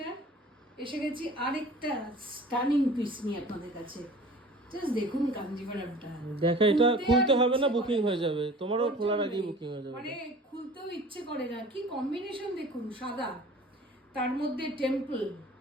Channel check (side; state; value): both; normal; correlation 0.44